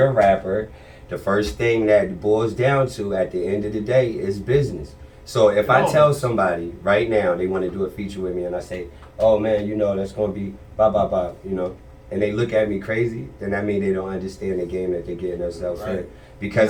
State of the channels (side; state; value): both; identical; correlation 1.00